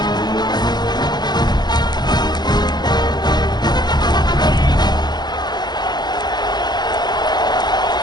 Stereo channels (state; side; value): late; right; 0.20 ms